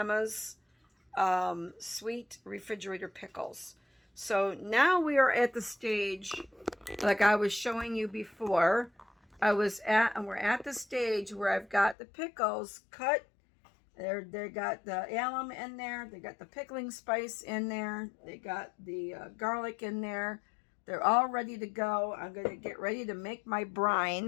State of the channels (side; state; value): right; drops out; at 12.0 s